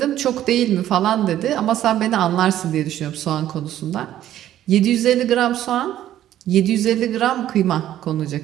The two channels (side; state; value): left; quieter; 12.3 dB